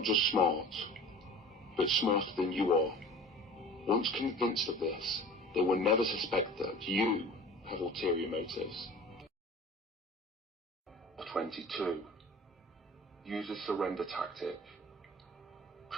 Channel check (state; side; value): normal; both; correlation 0.41